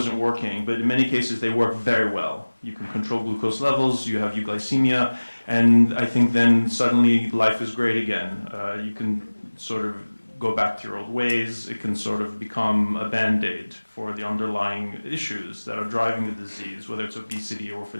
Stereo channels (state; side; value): inverted; both; correlation -1.00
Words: working, but in many cases, they work very well. You can control glucose levels, you have euglycemia, and I think then suddenly life is great again. You can sort of go back to your old ways. It can sort of become a band-aid for the underlying issues that are driving the disease, whether it's obesity or if